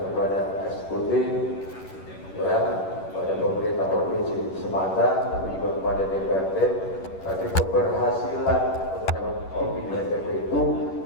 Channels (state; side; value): late; right; 11 ms